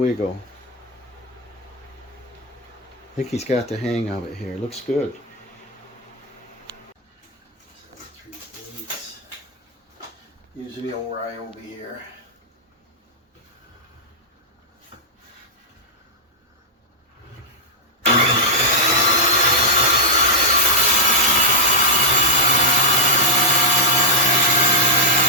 I think he's got the hang of it here. Looks good. 3/8. Usually over I will be here.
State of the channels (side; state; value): both; normal; correlation -0.06